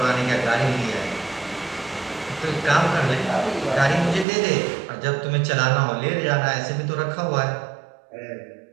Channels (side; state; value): left; drops out; at 4.2 s